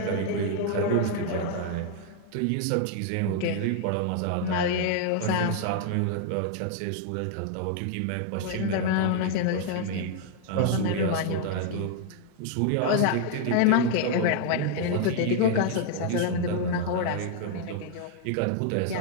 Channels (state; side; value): different; both; correlation 0.00